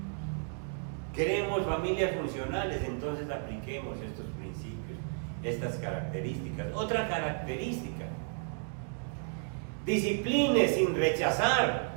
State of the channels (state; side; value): silent; left; 56 dB below the other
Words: Queremos familias funcionales, entonces apliquemos estos principios, estas características. Otra característica: discipline sin rechazar.